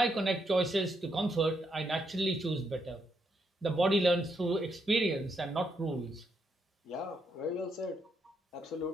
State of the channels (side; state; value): both; normal; correlation 0.78